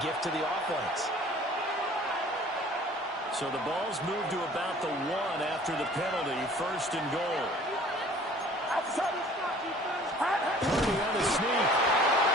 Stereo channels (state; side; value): normal; both; correlation 0.51